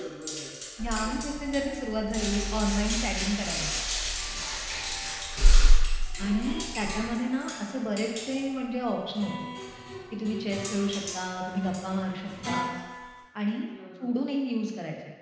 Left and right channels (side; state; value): both; identical; correlation 1.00